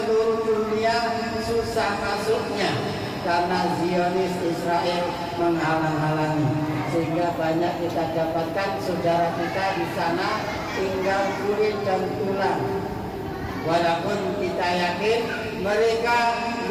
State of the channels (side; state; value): both; identical; correlation 1.00